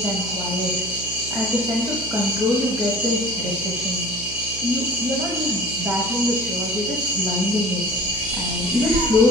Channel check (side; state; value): right; noise; hum, 13 dB below the sound